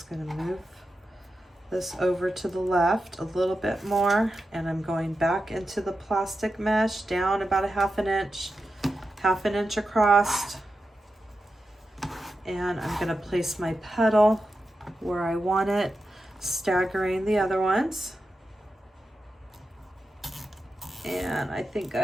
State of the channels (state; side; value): normal; both; correlation 0.90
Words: going to move this over to the left a little bit more, and I'm going back into the plastic mesh down about a 1/2 inch across, and I'm going to place my petal where I want it, staggering the other ones. And I think